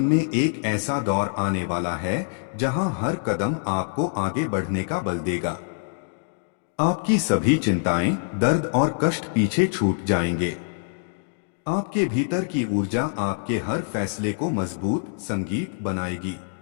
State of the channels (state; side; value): silent; right; digital silence